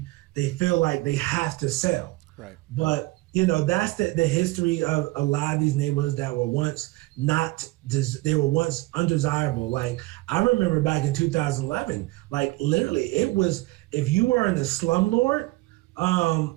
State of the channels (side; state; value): left; quieter; 20.9 dB